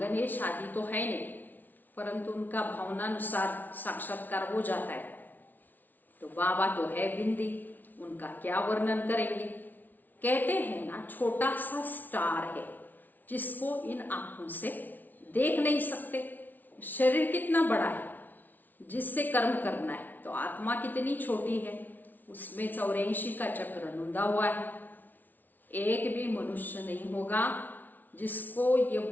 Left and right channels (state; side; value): late; right; 0.084 ms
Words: आदि तो है नहीं, परंतु उनका भावनानुसार साक्षात्कार हो जाता है। तो बाबा तो है बिंदी, उनका क्या वर्णन करेंगे। कहते हैं ना छोटा सा स्टार है जिसको इन आंखों से देख नहीं सकते। शरीर कितना बड़ा है जिससे कर्म करना है, तो आत्मा कितनी छोटी है, उसमें 84 का चक्र नूंदा हुआ है। एक भी मनुष्य नहीं होगा जिसको ये